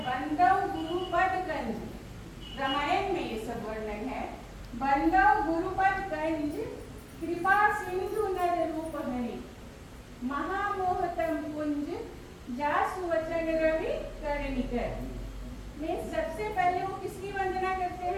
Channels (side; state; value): both; identical; correlation 1.00